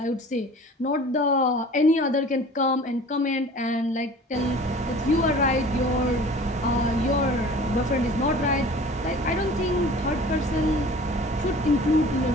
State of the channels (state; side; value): normal; both; correlation 0.44